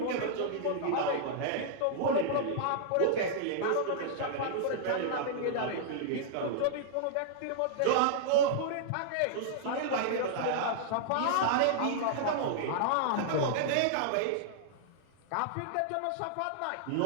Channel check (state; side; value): different; both; correlation -0.01